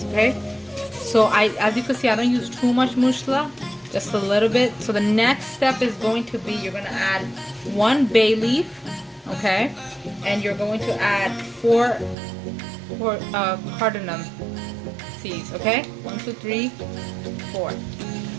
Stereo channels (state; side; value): drops out; left; at 12.2 s